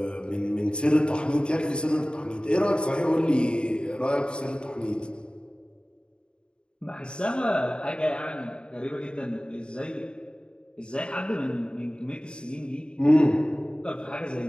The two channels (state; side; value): late; right; 0.052 ms